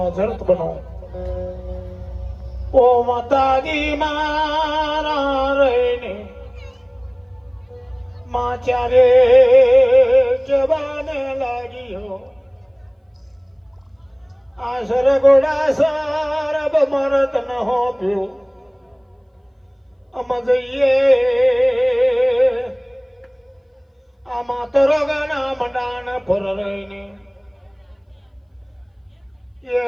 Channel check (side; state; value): both; identical; correlation 1.00